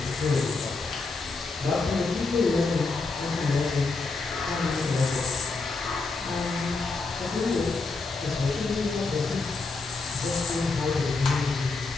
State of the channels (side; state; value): right; quieter; 3.9 dB